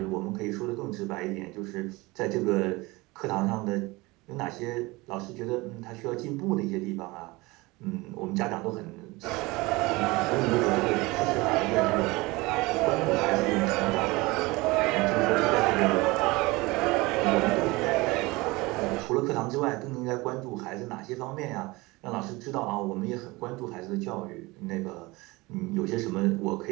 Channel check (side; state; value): left; quieter; 22.7 dB